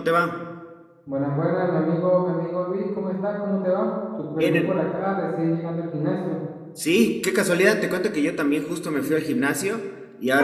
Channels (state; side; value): identical; both; correlation 1.00